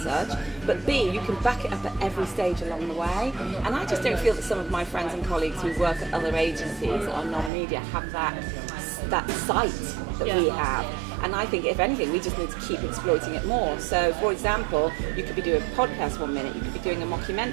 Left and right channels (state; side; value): drops out; left; at 7.5 s